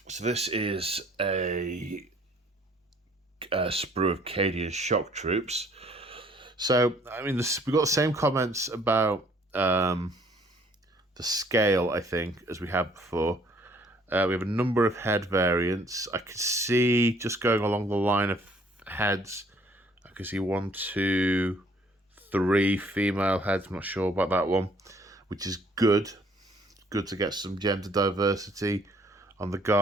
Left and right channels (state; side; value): normal; both; correlation 0.60